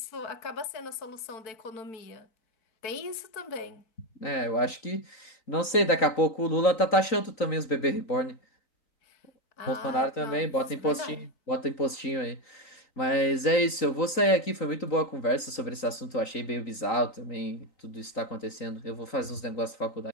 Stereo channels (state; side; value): late; right; 3.9 ms